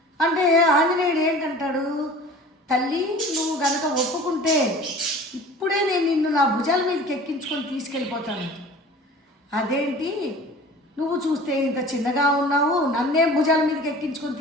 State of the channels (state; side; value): normal; both; correlation 0.42